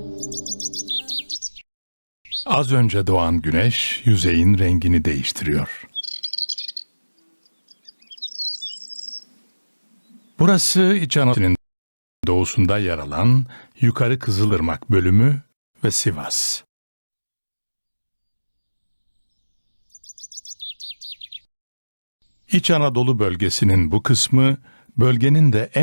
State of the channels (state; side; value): inverted; both; correlation -1.00